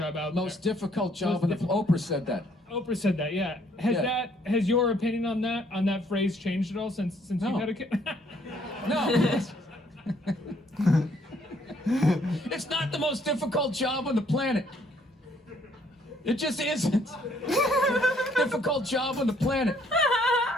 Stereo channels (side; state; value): both; normal; correlation 0.65